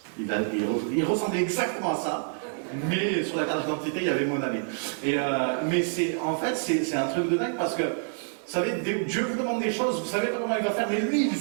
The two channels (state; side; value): silent; left; digital silence